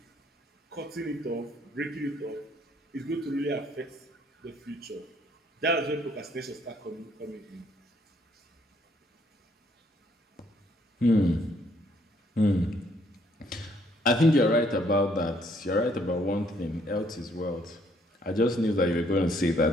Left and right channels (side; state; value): both; normal; correlation 0.66